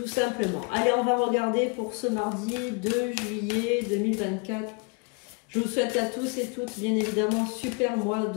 simplement. Allez, on va regarder pour ce mardi 2 juillet 2024. Je vous souhaite à tous et toutes, bien évidemment, super mois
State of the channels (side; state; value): right; quieter; 32.3 dB